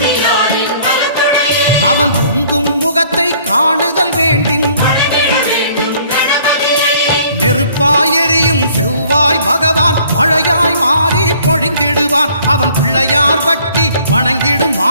அவன் பொங்கும் முகத்தை காணுதல் வேண்டின் நெருப்பாய் எரியும் செவ்வாய் பகவான் மழையாய் மாறி பொழிந்திடுவான் அவன் பிள்ளையார் பட்டி வணங்கிடும்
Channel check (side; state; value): both; inverted; correlation -0.57